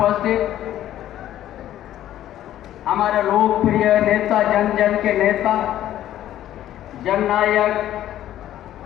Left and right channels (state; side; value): quieter; right; 12.5 dB